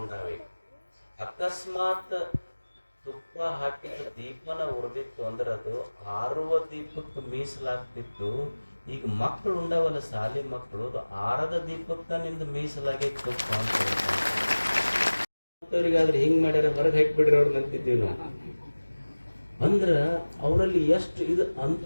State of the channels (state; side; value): inverted; both; correlation -1.00